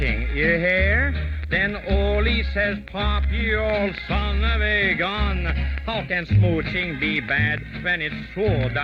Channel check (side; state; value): both; identical; correlation 1.00